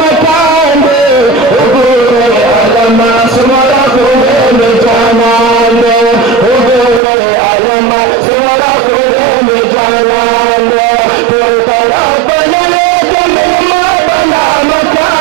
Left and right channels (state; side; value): drops out; left; at 7.0 s